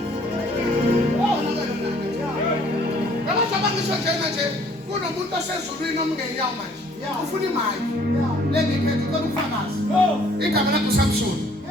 Kunomuntu osezulwini omngenyawo manje ufuna imali lengikhethe ucela ukufakazi igama lakho uSamson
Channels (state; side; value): normal; both; correlation 0.59